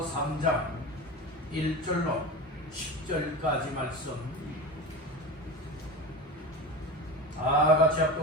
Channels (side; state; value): both; normal; correlation 0.28